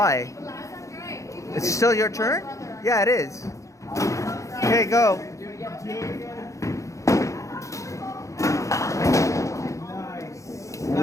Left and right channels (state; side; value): late; right; 0.15 ms